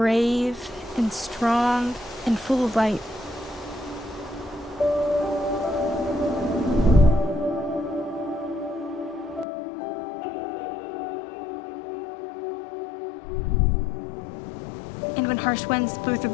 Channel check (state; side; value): drops out; right; at 9.5 s